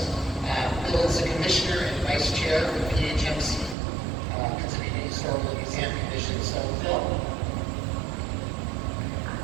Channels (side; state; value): left; drops out; at 3.8 s